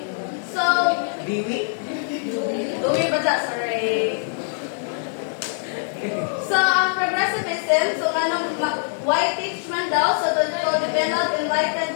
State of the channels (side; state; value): right; silent; digital silence